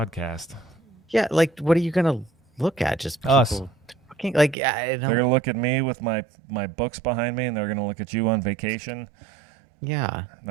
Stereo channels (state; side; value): drops out; left; at 4.5 s